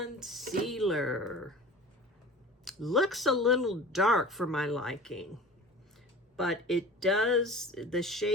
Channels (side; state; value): both; normal; correlation 0.38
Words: Looks a little dark for my liking, but it does, the